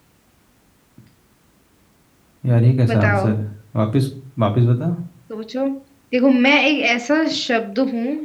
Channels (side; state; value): both; identical; correlation 1.00